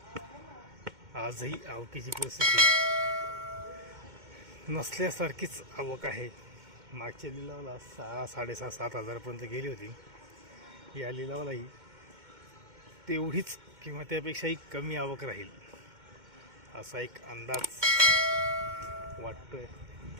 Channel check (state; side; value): late; left; 2.1 ms